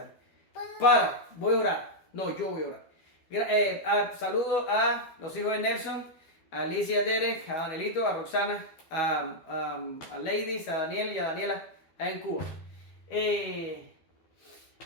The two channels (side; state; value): right; late; 12 ms